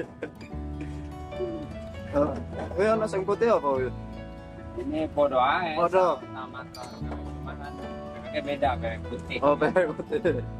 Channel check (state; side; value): identical; both; correlation 1.00